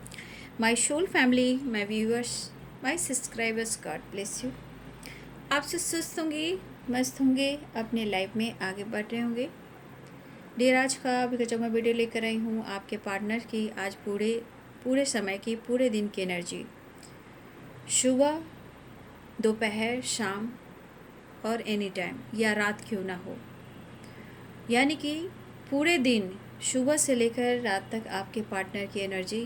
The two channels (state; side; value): identical; both; correlation 1.00